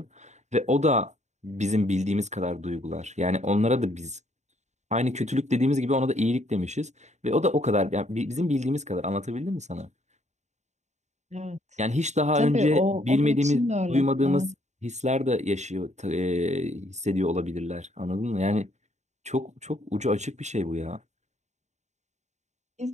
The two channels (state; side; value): late; left; 0.34 ms